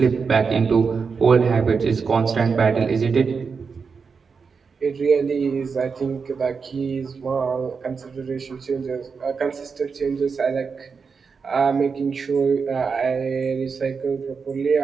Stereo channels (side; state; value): left; quieter; 5.4 dB